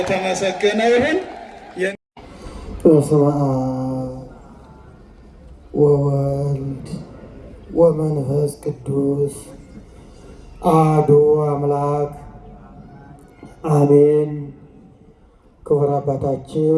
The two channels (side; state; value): both; identical; correlation 1.00